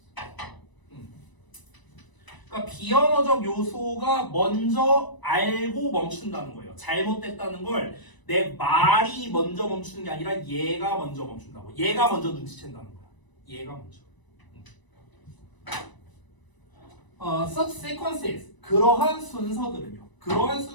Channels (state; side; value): late; right; 1.0 ms